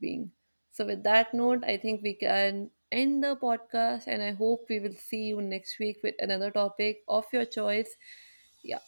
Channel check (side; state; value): both; inverted; correlation -1.00